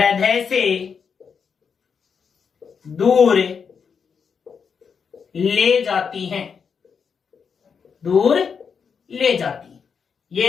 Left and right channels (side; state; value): right; quieter; 6.3 dB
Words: से दूर ले जाती हैं। दूर ले जाती हैं।